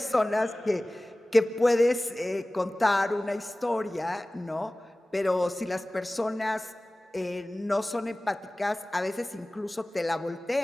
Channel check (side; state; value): both; normal; correlation 0.98